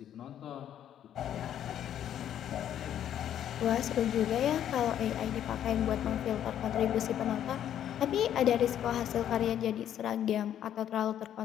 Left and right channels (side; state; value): right; quieter; 10.4 dB